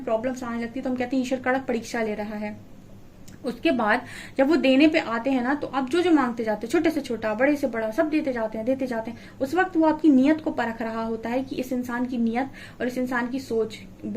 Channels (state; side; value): identical; both; correlation 1.00